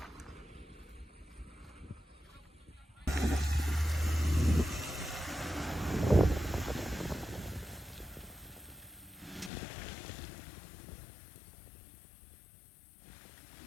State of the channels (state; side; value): drops out; right; at 9.5 s